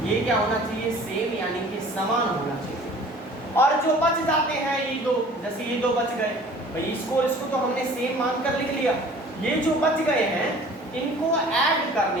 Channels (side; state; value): both; normal; correlation 0.48